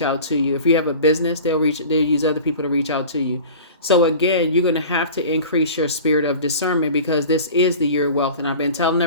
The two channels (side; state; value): both; inverted; correlation -0.39